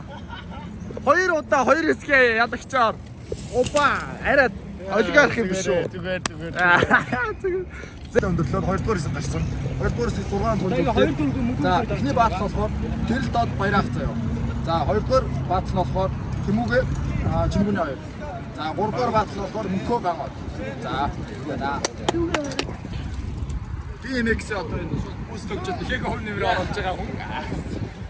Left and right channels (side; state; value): both; identical; correlation 1.00